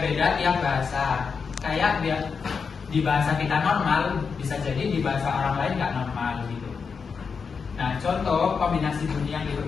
tiap bahasa. Kayak di bahasa kita normal bisa jadi di bahasa orang lain nggak normal gitu. Nah, contoh kombinasi bunyi yang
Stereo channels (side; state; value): right; quieter; 5.6 dB